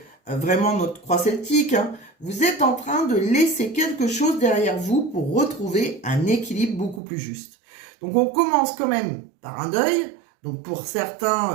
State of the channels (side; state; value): left; drops out; at 7.0 s